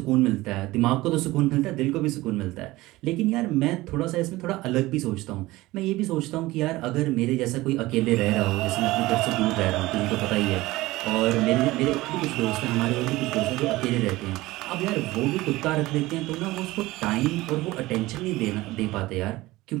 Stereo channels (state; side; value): quieter; left; 18.9 dB